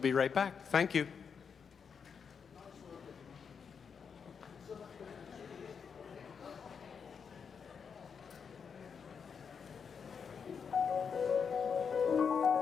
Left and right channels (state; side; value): quieter; right; 6.4 dB